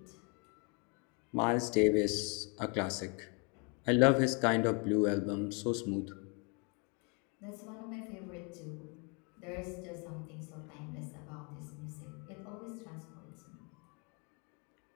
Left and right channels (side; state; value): right; quieter; 33.8 dB